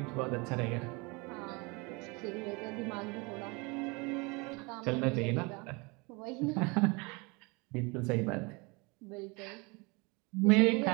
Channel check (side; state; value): left; quieter; 28.0 dB